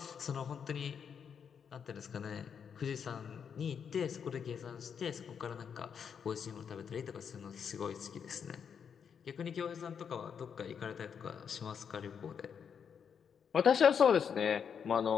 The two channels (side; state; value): right; quieter; 7.2 dB